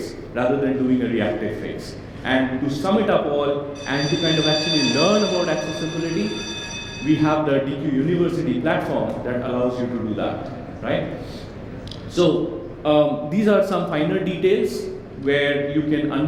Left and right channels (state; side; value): identical; both; correlation 1.00